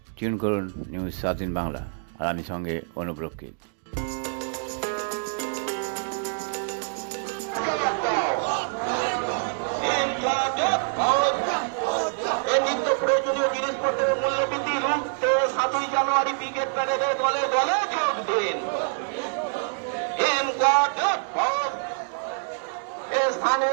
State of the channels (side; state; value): left; silent; digital silence